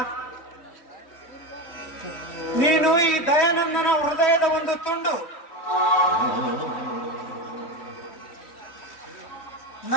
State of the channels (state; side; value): late; right; 3.1 ms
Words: ನೀನು ಈ ದಯಾನಂದನ ಹೃದಯದ ಒಂದು ತುಂಡು.